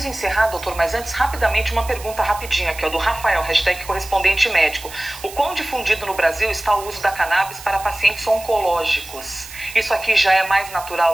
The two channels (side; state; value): right; noise; hiss, 15 dB below the sound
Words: encerrar, doutor, mas antes, rapidamente, uma pergunta rapidinha aqui, ó, do Rafael, hashtag Correspondente Médico. O quão difundido no Brasil está o uso da cannabis para pacientes oncológicos? Isso aqui já é mais